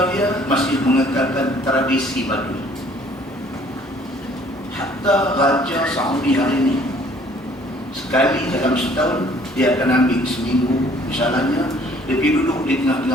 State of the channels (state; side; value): normal; both; correlation 0.58